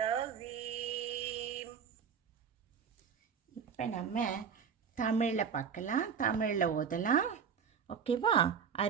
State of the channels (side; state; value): left; quieter; 6.9 dB